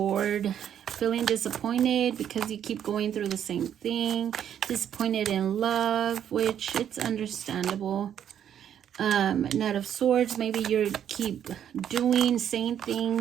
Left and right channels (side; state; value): left; quieter; 9.5 dB